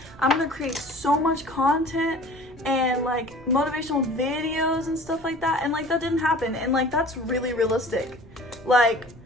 I'm gonna create so much content and like motivational videos and stuff like that, and like that didn't happen, and like that's really realistic. Like,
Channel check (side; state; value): right; noise; rumble, 23 dB below the sound